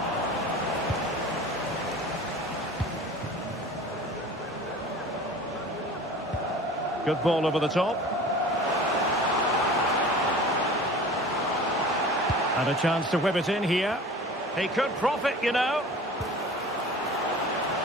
Good ball over the top. And a chance to whip it in here. He could profit, you know.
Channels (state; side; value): normal; both; correlation 0.40